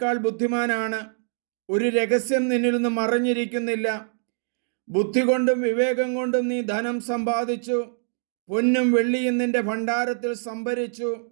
ബുദ്ധിമാനാണ്. ഒരു രഹസ്യം നിന്നിൽ നിന്ന് മറഞ്ഞിരിക്കുന്നില്ല. ബുദ്ധി കൊണ്ടും വിവേകം കൊണ്ടും നീ ധനം സമ്പാദിച്ചു, പൊന്നും വെള്ളിയും നിന്റെ ഭണ്ഡാരത്തിൽ സംഭരിച്ചു.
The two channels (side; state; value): left; silent; digital silence